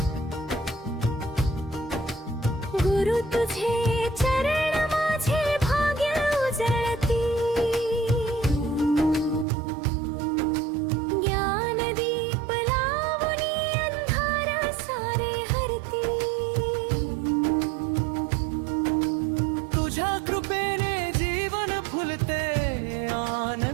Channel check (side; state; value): left; drops out; at 9.5 s